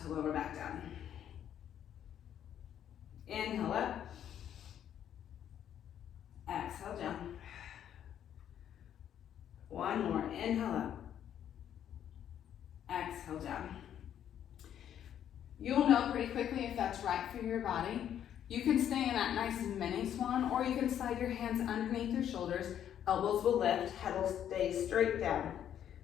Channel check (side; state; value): right; quieter; 10.0 dB